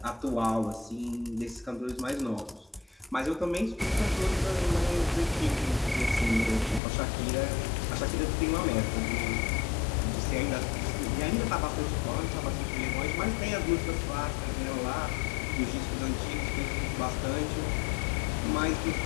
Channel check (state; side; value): drops out; right; at 6.8 s